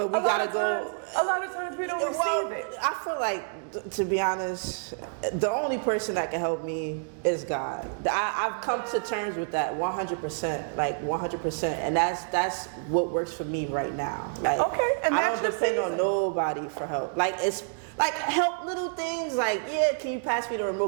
we gotta go. A lot of times we don't receive it. I feel like, to be honest, the only person that can help me is God. I've come to terms with that 100%, like 100%, and that's what works for me right now. Like, Okay, and I that's don't your depend on season. nobody for help. Like Like help little things like, yeah, can you pass me the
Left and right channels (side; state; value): left; silent; digital silence